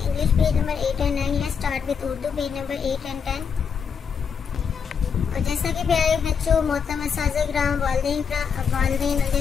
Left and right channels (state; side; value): quieter; right; 6.6 dB